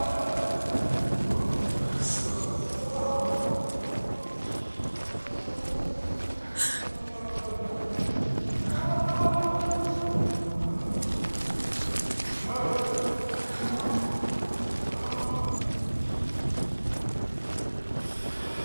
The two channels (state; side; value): inverted; both; correlation -1.00